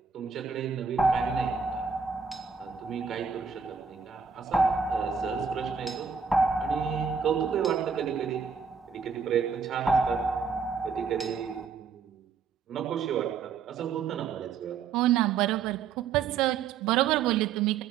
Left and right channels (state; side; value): quieter; left; 6.1 dB